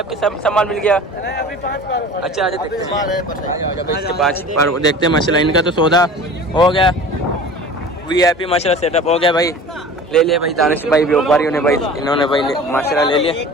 आपकी, सब सामान मिल गया? अभी 5 पार। अच्छा अच्छा देखते हैं इसके 5 पारू देखते हैं माशाल्लाह। इनका तो सौदा हो गया, VIP माशाल्लाह सेटअप हो गया भाई। ले लिया भाई दानिश भाई व्यापारियों ने भाई, इन्होंने भाई माशाल्लाह ले लिया।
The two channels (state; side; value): normal; both; correlation 0.40